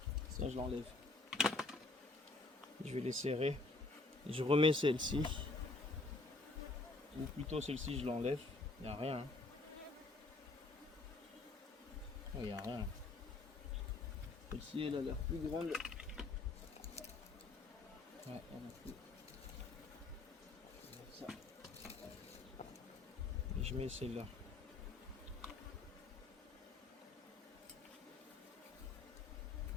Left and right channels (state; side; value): quieter; right; 3.4 dB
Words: Ça, je l'enlève. Je vais les serrer. Je remets celle-ci. Ou plutôt celle-ci, je l'enlève. Il n'y a rien. Il n'y a rien. Celle-ci, elle a l'air plus grande. Ouais, elle a plus. Ça. Et je mets celle-là.